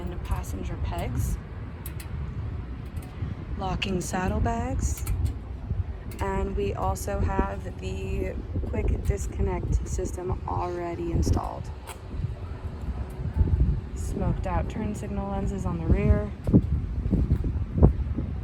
passenger pegs. Locking saddlebags. And we also have the quick disconnect system already installed. Smoked out turn signal lenses on the rear.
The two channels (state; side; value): identical; both; correlation 1.00